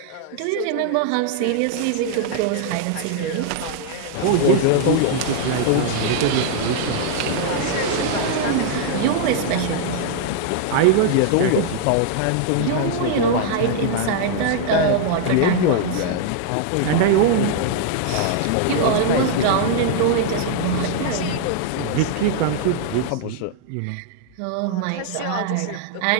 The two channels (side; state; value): both; different; correlation -0.01